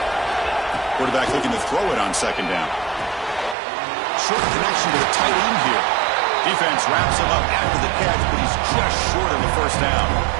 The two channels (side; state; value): left; drops out; at 3.6 s